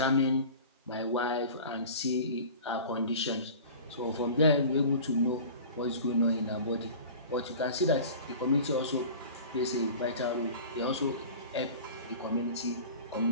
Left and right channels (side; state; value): both; inverted; correlation -0.39